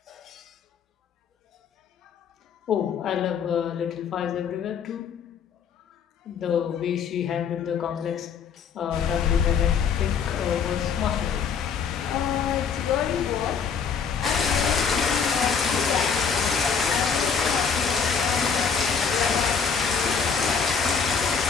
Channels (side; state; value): right; quieter; 6.4 dB